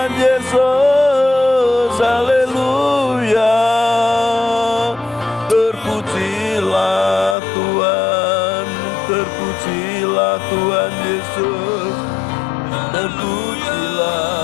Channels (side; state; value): right; drops out; at 7.4 s